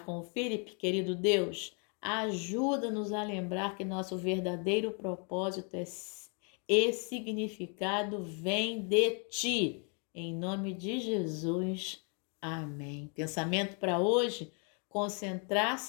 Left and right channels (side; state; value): right; quieter; 37.8 dB